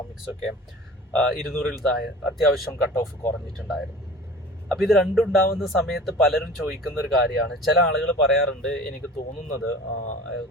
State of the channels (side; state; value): both; normal; correlation 0.41